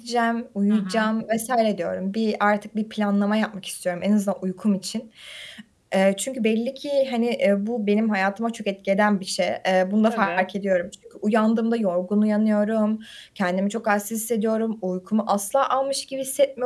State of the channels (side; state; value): both; identical; correlation 1.00